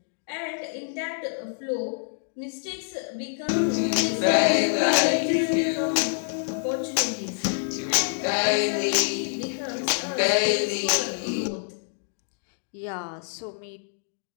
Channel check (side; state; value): right; silent; digital silence